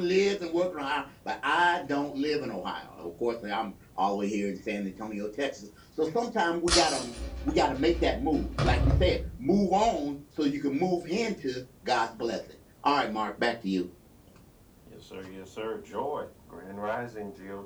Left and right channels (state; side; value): identical; both; correlation 1.00